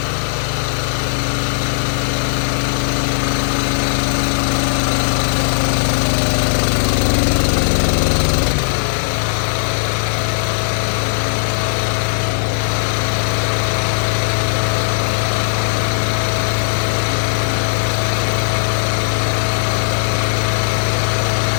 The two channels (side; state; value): right; silent; digital silence